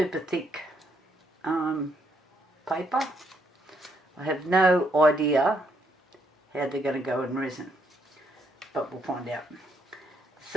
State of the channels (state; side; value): normal; both; correlation 0.73